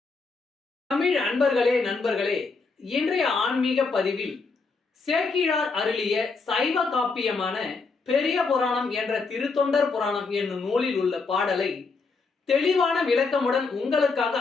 தமிழ் அன்பர்களே, நண்பர்களே, இன்றைய ஆன்மீக பதிவில் சேக்கிழார் அருளிய சைவ காப்பியமான பெரிய புராணம் என்ற திருத்தொண்டர் புராணம் என்னும் நூலில் உள்ள பாடலை தெளிவான விளக்கமுடன் உங்களுக்காக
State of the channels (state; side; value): quieter; right; 4.3 dB